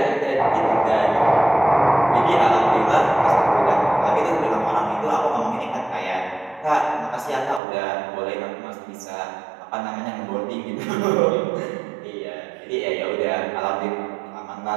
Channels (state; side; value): drops out; left; at 7.6 s